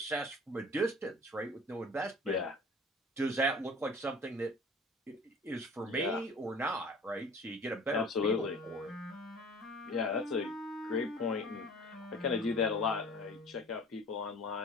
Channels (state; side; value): normal; both; correlation 0.45